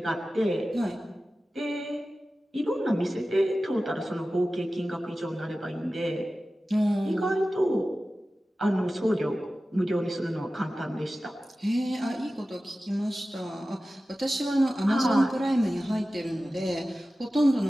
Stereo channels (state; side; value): normal; both; correlation 0.95